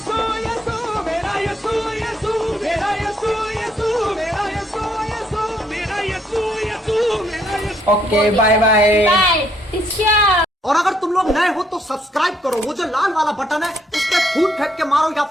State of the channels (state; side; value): normal; both; correlation 0.71